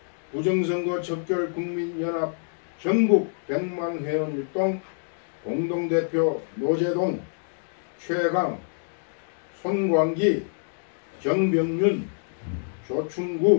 부정선거 척결 국민연합 전국 100만 회원 일동 공동대표 노재동, 최강, 손광기, 정병윤,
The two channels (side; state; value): right; silent; digital silence